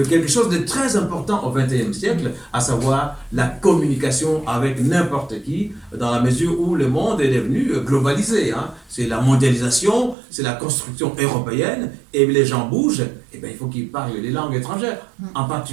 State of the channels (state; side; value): drops out; left; at 10.2 s